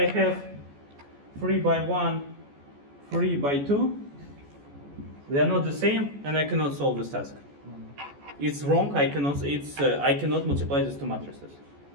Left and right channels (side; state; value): left; late; 14 ms